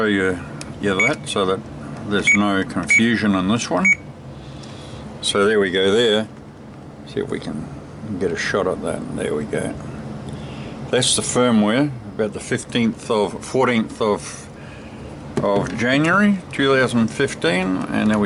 you that so that there's no confusion on this one. So there we go there. See if we can get a shot at that. There we go. That's the firmware, about the 14th of January 2015, and there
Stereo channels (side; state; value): both; identical; correlation 1.00